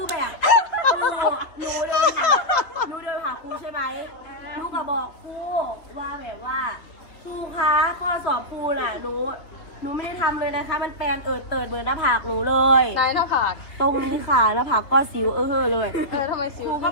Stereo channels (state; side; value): late; right; 3.3 ms